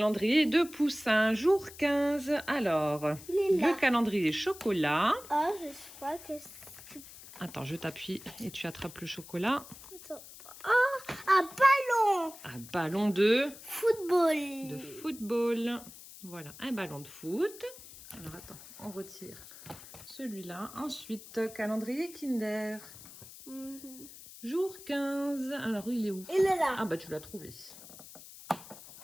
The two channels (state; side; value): noise; left; hiss, 17 dB below the sound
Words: de Poussin, jour 15. Alors, le calendrier chocolat. Oh, je crois que c'est... Attends, je t'appuie et tu attrapes le chocolat. Attends. Oh, un ballon. Un ballon de Football. football. Voilà, un ballon de foot. Alors attends, on retire celui-là. Ensuite, calendrier Kinder. Jour 15. Alors, il est où? Il est là. Ah bah, tu l'as trouvé.